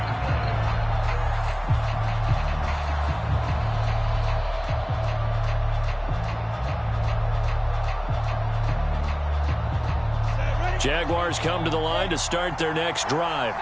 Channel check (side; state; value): both; identical; correlation 1.00